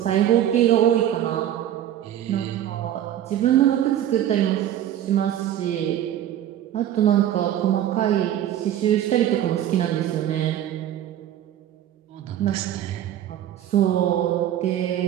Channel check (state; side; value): quieter; left; 11.5 dB